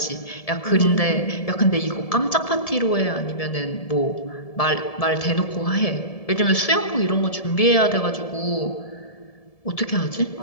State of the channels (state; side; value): late; right; 1.7 ms